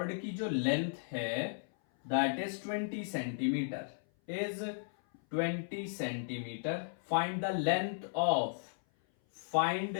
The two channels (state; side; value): silent; right; 54 dB below the other